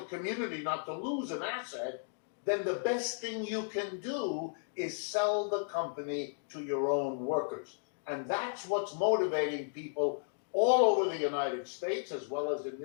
community not to lose an asset, then the best thing you can do is sell the company to your own workers. And that's what's motivating people all over the United States, as well as in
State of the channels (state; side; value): silent; right; digital silence